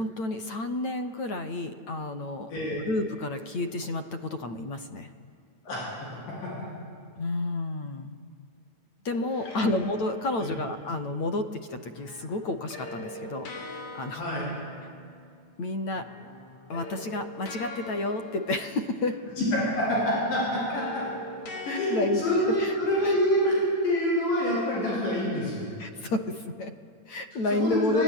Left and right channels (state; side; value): late; right; 9.0 ms